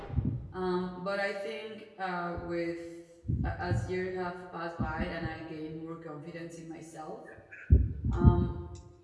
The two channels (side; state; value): both; identical; correlation 1.00